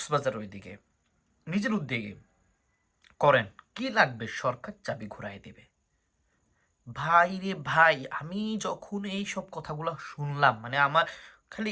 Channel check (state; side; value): identical; both; correlation 1.00